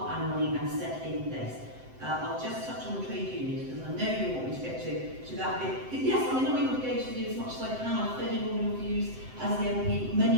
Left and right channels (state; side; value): late; left; 7.8 ms